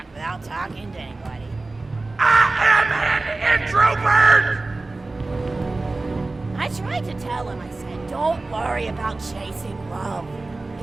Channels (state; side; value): quieter; left; 3.3 dB